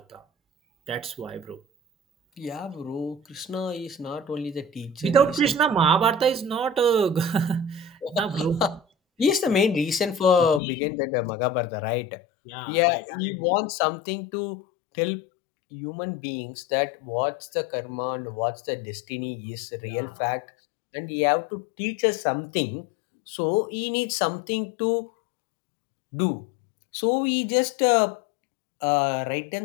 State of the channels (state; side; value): drops out; right; at 10.6 s